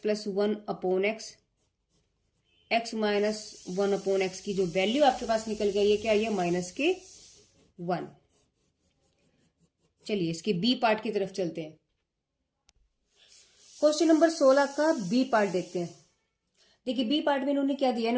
1 upon x minus 1/x की जो वैल्यू आपके पास निकल गई है, क्या है, माइनस के 1। चलिए इसके बी पार्ट की तरफ चलते हैं। क्वेश्चन नंबर 16 का बी पार्ट देखते हैं। देखिए बी पार्ट में इन्होंने क्या दिया,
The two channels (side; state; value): both; identical; correlation 1.00